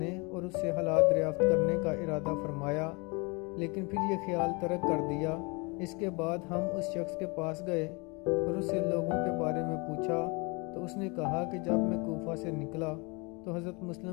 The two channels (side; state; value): right; quieter; 29.5 dB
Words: اور اس سے حالات دریافت کرنے کا ارادہ فرمایا، لیکن پھر یہ خیال ترک کر دیا۔ اس کے بعد ہم اس شخص کے پاس گئے اور اس سے لوگوں کے بارے میں پوچھا تو اس نے کہا کہ جب میں کوفہ سے نکلا تو حضرت